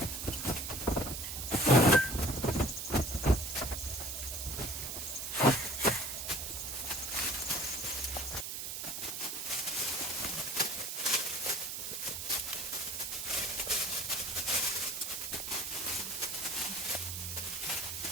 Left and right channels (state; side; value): noise; right; hiss, 5 dB below the sound